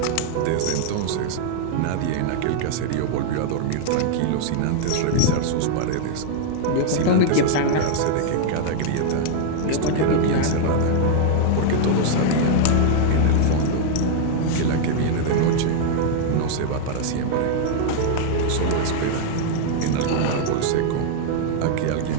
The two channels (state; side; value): different; both; correlation 0.00